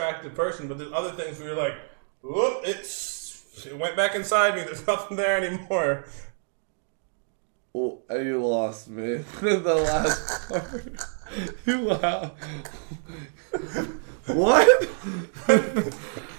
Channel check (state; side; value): silent; left; 60 dB below the other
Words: person, but there's other things where you're like, whoop, it went back inside me. There's nothing there anymore. Well, you lost me. The last part. Wow. What?